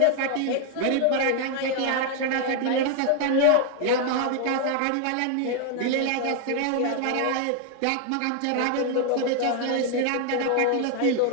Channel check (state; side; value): different; both; correlation 0.00